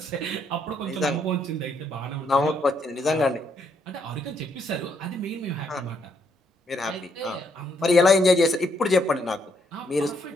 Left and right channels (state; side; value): normal; both; correlation 0.73